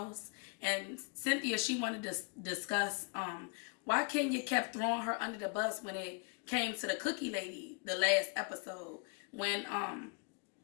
and Cynthia, she wanted to discuss why Kenya kept throwing her under the bus when it came to the cookie lady the last episode. When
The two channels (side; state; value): right; quieter; 34.7 dB